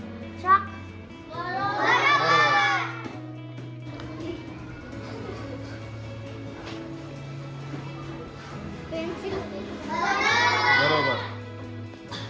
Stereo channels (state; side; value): identical; both; correlation 1.00